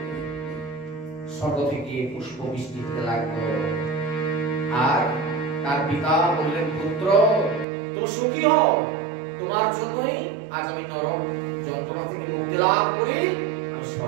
স্বর্গ থেকে পুষ্প বৃষ্টি হতে লাগলো। আর তার পিতা বললেন, পুত্র তুমি সুখী হও, তোমার জন্যই আজ আমি নরক যন্ত্রণা থেকে মুক্তি লাভ করে আমি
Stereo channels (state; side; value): drops out; left; at 7.7 s